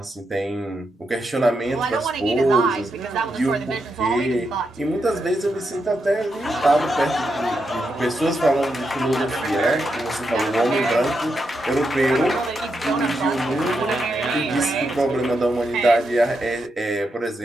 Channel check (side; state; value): both; normal; correlation 0.84